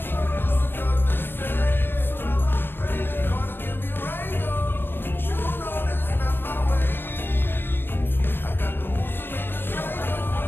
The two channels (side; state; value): right; late; 0.10 ms